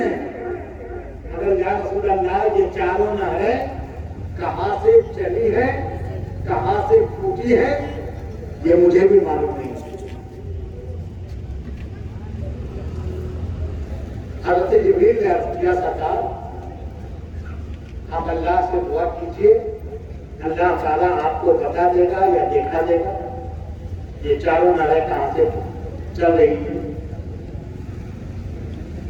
مگر یا رسول اللہ یہ چاروں نہریں کہاں سے چلی ہیں، کہاں سے پھوٹی ہے، یہ مجھے بھی معلوم نہیں۔ حضرت جبریل نے عرض کیا سرکار آپ اللہ سے دعا کیجئے، اللہ تعالیٰ آپ کو بتا دے گا یا دیکھا دے گا یہ چاروں نہریں کہاں سے چل رہی ہیں۔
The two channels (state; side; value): identical; both; correlation 1.00